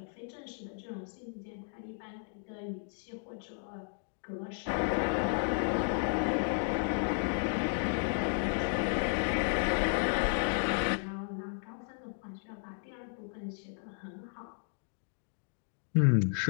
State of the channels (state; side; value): silent; right; 55 dB below the other